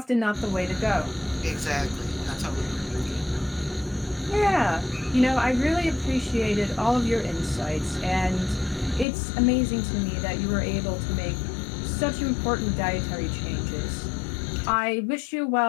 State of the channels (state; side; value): drops out; right; at 9.1 s